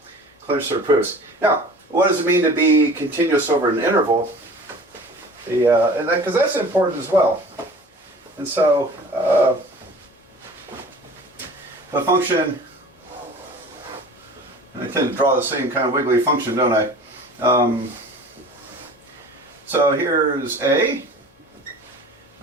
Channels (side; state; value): both; normal; correlation 0.42